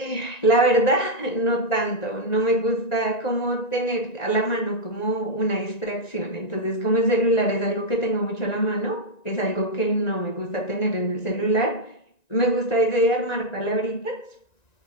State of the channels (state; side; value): late; right; 1.9 ms